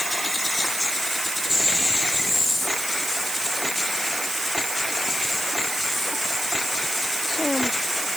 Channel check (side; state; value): right; noise; hiss, 3 dB below the sound